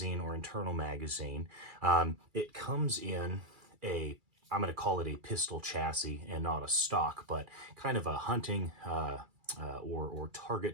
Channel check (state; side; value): late; left; 2.3 ms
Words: or internal magazine. It comes in I'm going to call it a pistol chassis and not a stock, but kind of a hunting or